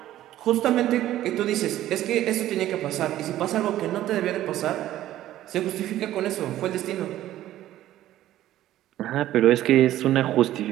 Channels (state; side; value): quieter; left; 13.6 dB